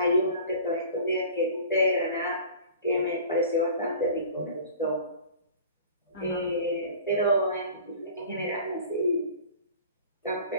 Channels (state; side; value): inverted; both; correlation -0.42